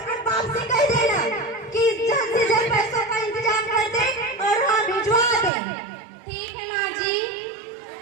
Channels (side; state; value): left; drops out; at 5.5 s